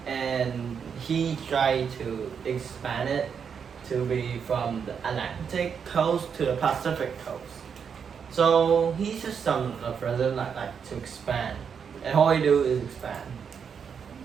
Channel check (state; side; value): quieter; left; 6.8 dB